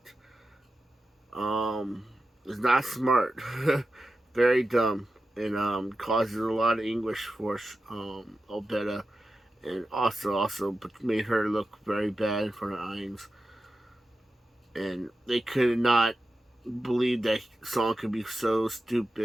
is not smart, very dumb, and causes a lot of anguish for Albetta, and also made her look very bad in front of Ainz. And they could not believe that Song could be so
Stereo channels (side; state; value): both; normal; correlation 0.91